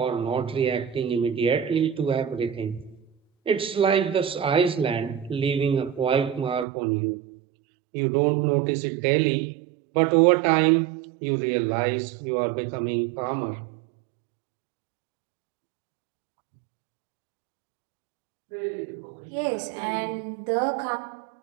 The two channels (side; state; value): left; drops out; at 6.7 s